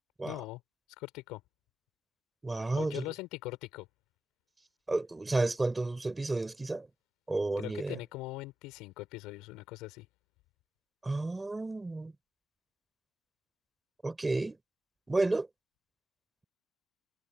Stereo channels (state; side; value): normal; both; correlation 0.92